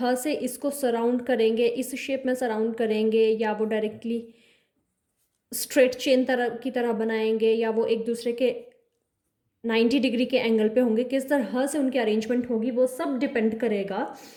से इसको सराउंड करेंगे, इस शेप में सराउंड करेंगे, या वो डायरेक्टली स्ट्रेट चेन तरह की तरह बनाएंगे, या वो एक दूसरे के 90 डिग्री के एंगल पे होंगे, किस तरह से उनकी अरेंजमेंट होगी, वो सब डिपेंड करेगा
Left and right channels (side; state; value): both; identical; correlation 1.00